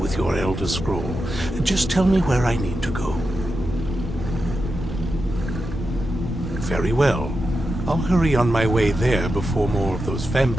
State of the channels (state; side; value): normal; both; correlation 0.89